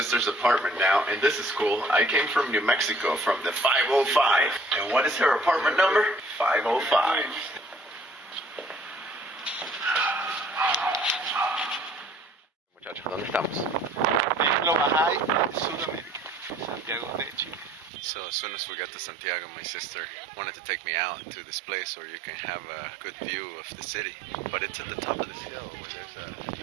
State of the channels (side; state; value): left; drops out; at 17.9 s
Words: apartment now, and this is cool. I came from New Mexico, from the 505. And what is her apartment number? 505. Muchachos, ¿dónde estamos? En lo Bahai, Sudamérica, Santiago de Chile. So as soon as we got to Santiago, my sister wanted to take me out to this place where you can have a good view of the city. But it's at the top of this hill where